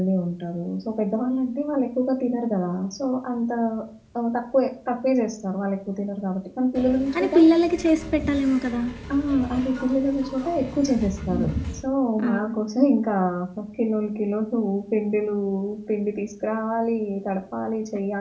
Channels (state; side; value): identical; both; correlation 1.00